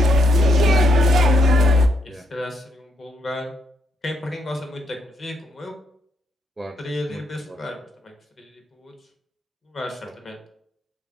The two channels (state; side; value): normal; both; correlation 0.76